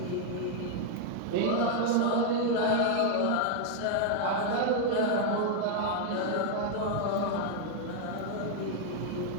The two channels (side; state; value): both; different; correlation 0.00